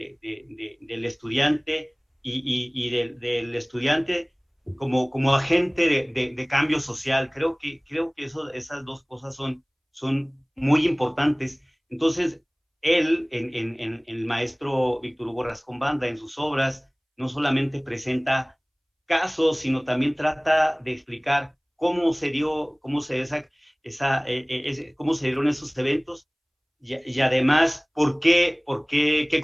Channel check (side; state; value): both; identical; correlation 1.00